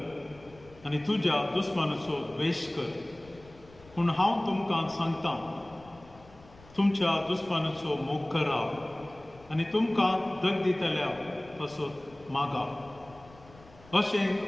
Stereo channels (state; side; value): noise; left; rumble, 24 dB below the sound